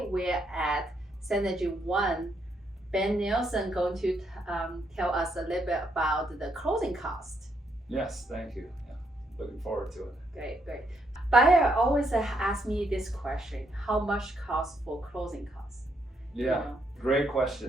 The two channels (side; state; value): both; normal; correlation 0.75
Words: at Synergy 1. Ben Nielsen going to tell us a little bit about the closing cost. Yes, thank you. Yeah, looking forward to it. Great. Buyer always asks me this question, how much cost for closing costs? Yeah, great